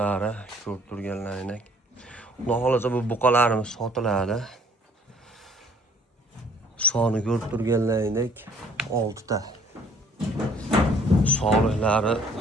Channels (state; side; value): normal; both; correlation 0.59